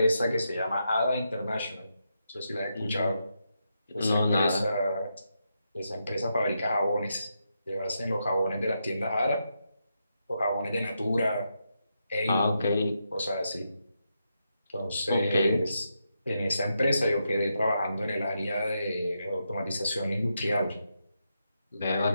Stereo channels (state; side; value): inverted; both; correlation -0.84